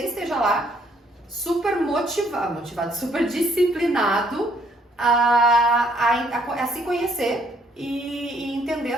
esteja lá super motivado, super disciplinado a se conhecer e entender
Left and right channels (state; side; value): normal; both; correlation 0.66